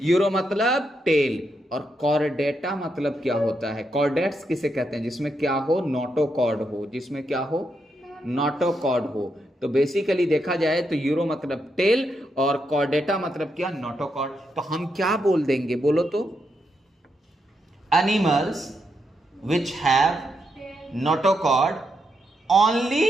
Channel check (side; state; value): both; normal; correlation 0.81